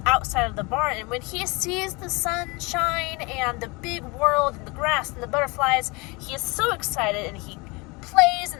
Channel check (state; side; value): quieter; right; 26.8 dB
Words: outside of the barn, and when he sees the sunshine and the big world and the grass and the butterflies, he is so excited, and he plays in